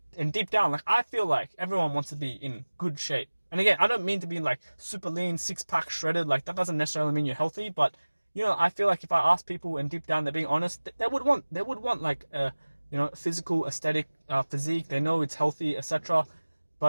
and deep down, like, I feel like everyone wants to be in good shape. And again, I don't mean to be like super lean, six pack shredded. Like, that doesn't necessarily mean you're healthy, but, you know, I feel like if I ask people and deep down they're being honest, they would want like you know, physical, aesthetic physique. They know it's healthy, etc.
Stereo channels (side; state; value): both; inverted; correlation -1.00